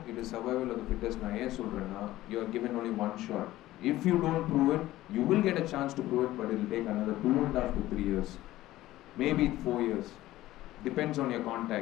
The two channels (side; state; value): right; quieter; 15.8 dB